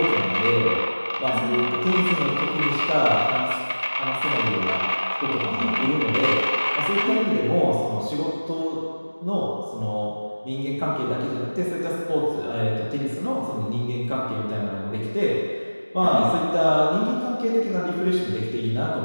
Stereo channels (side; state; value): both; inverted; correlation -1.00